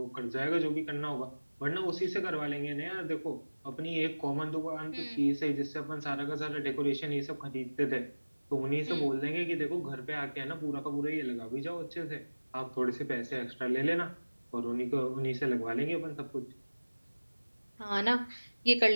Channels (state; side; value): inverted; both; correlation -1.00